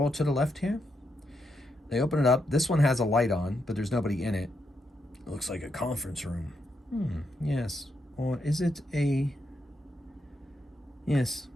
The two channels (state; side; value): normal; both; correlation 0.81